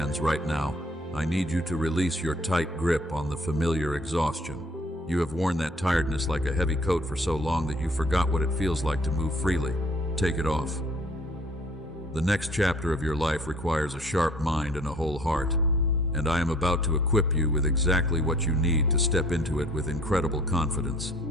right now. I need you to release your tight grip on the familiar exhaustion. You have worn that tiredness like a heavy coat for so long that you forgot what it feels like to move freely. Take it off. The next chapter of your life requires a sharp mind and a whole heart, and I am about to equip you with exactly what you need to step into it with incredible confidence.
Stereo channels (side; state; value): both; normal; correlation 0.55